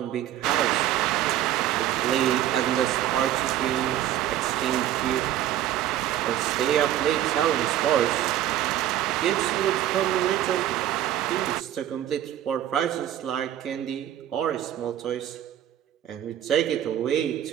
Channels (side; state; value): left; quieter; 12.1 dB